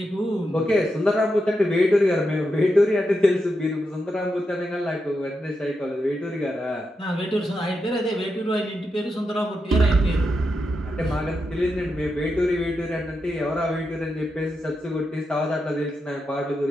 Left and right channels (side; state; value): both; normal; correlation 0.86